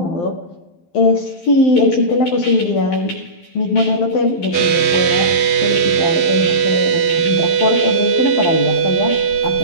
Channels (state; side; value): late; right; 12 ms